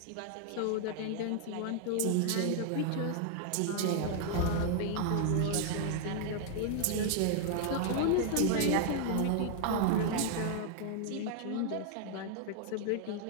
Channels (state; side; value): different; both; correlation 0.00